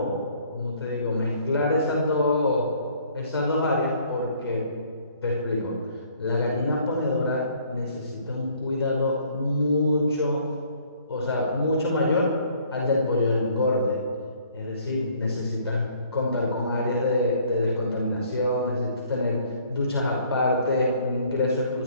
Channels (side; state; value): both; inverted; correlation -0.60